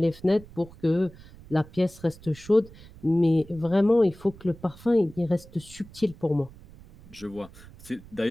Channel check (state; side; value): noise; right; rumble, 20 dB below the sound